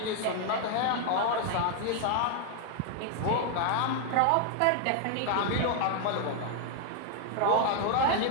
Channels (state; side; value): different; both; correlation 0.00